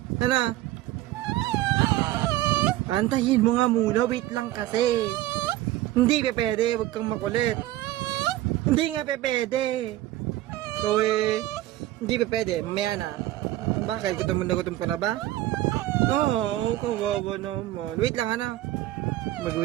Ano? Antayin mo nga muna. Wait lang kasi. Hindi pa pwede. Huwag kang makulit. Hindi nga pa pwede. So hindi pa pwede. Mamaya na. Bakit? Gutom ka na ba? Oo, kawawa naman. Wait lang, ano?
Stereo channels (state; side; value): quieter; left; 15.5 dB